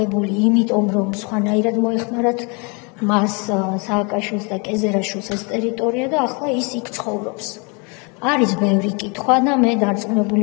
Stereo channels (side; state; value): right; quieter; 32.4 dB